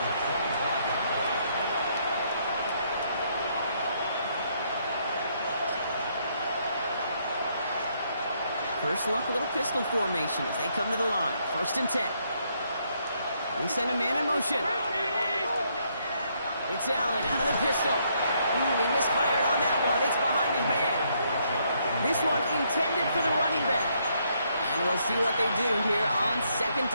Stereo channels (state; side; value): inverted; both; correlation -0.72